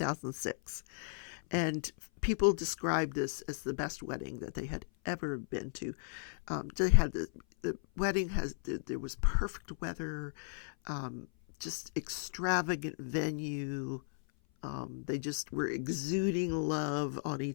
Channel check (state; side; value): silent; right; 54 dB below the other